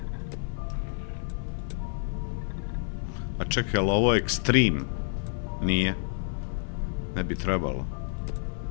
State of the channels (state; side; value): silent; right; 57 dB below the other